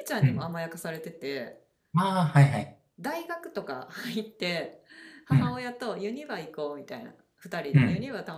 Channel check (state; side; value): identical; both; correlation 1.00